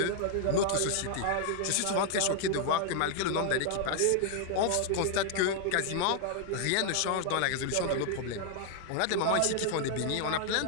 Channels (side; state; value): both; different; correlation 0.00